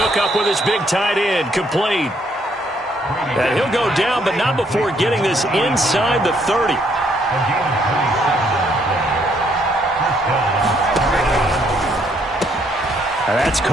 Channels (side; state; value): both; normal; correlation 0.70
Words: up with his big tight end. Complete. And he'll go down, but not before getting this inside the 30. And that's